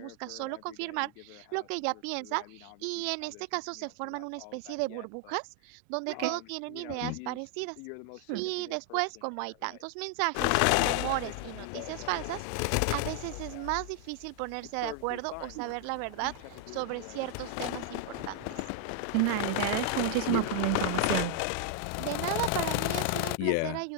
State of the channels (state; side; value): different; both; correlation 0.00